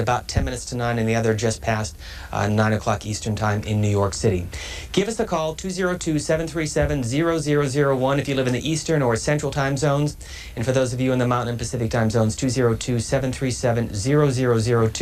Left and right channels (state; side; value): identical; both; correlation 1.00